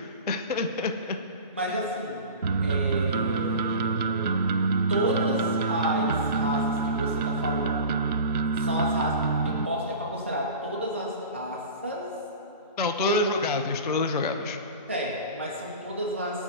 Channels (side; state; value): both; inverted; correlation -0.35